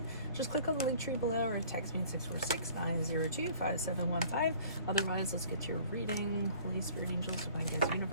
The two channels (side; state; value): both; inverted; correlation -0.52